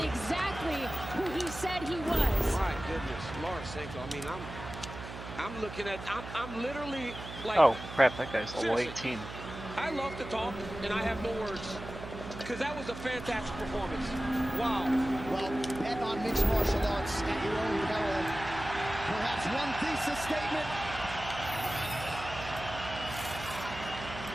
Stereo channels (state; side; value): noise; right; hum, 11 dB below the sound